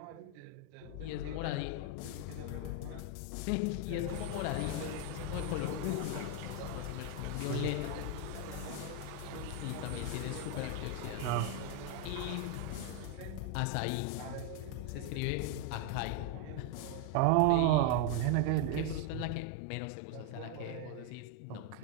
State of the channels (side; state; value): both; different; correlation 0.01